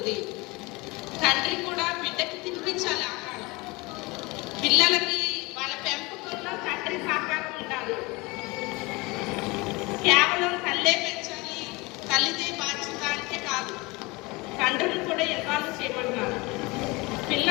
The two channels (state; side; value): quieter; right; 24.4 dB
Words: తండ్రి కూడా బిడ్డకి తినిపించాలి ఆహారం. పిల్లలకి వాళ్ళ పెంపకంలో తండ్రి సహకారం ఉండాలి. కేవలం తల్లే పెంచాలి, తల్లిదే బాధ్యత అంటే కాదు, తండ్రిని కూడా ఇన్వాల్వ్ చేయమన్నారు.